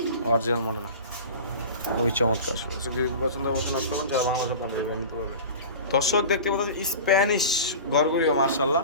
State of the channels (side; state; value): both; inverted; correlation -0.35